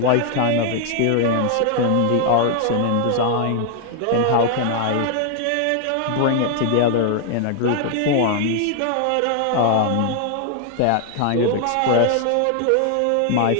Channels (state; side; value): different; both; correlation 0.00